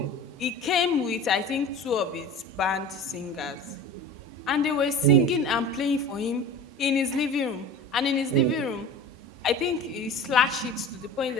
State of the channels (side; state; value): both; normal; correlation 0.37